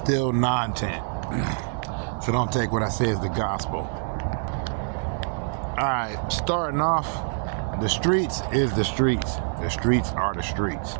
non-tent. So don't take what I say as the gospel. Alright, starting off, the streets is the streets. The streets are the streets.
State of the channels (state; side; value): silent; left; digital silence